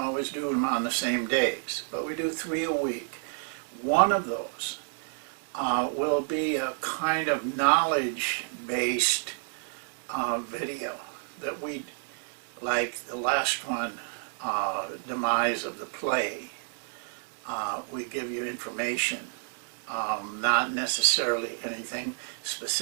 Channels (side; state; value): left; silent; 58 dB below the other